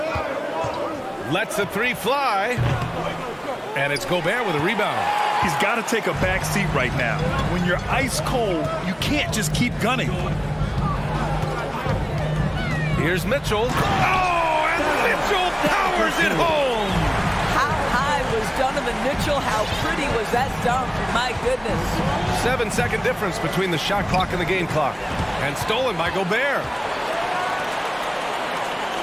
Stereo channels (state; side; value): identical; both; correlation 1.00